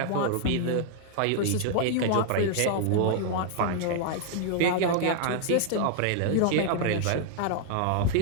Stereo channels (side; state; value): both; different; correlation 0.00